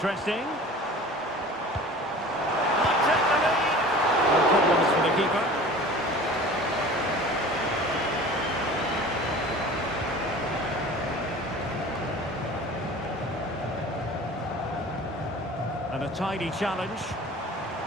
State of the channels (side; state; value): both; normal; correlation 0.41